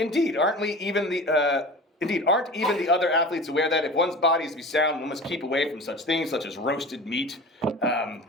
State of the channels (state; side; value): normal; both; correlation 0.35